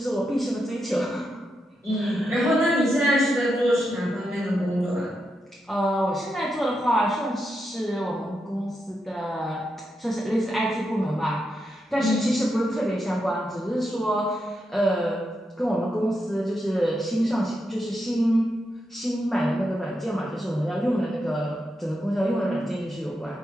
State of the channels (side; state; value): both; normal; correlation 0.85